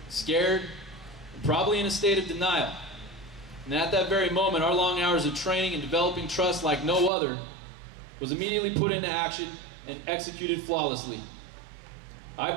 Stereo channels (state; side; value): drops out; left; at 7.1 s